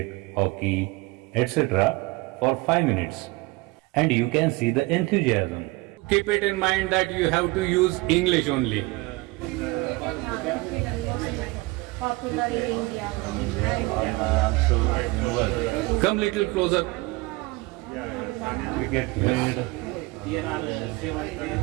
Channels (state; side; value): quieter; left; 23.1 dB